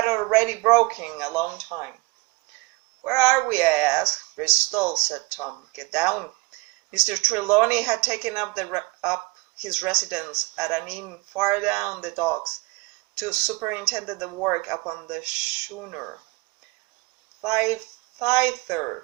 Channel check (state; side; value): quieter; left; 25.0 dB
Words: already broken a long time. "Where are we?" I asked. "Bristol," said Tom. "Get down." Mr. Trelawney had taken up his residence at an inn far down the docks to superintend the work upon the schooner. Thither